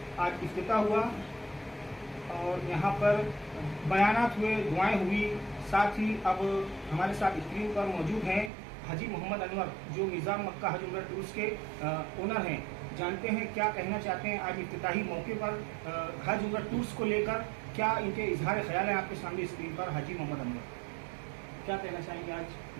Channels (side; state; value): left; drops out; at 8.5 s